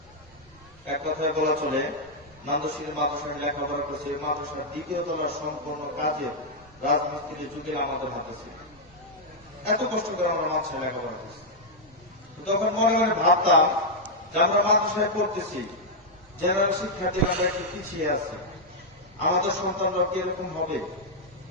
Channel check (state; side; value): normal; both; correlation -0.04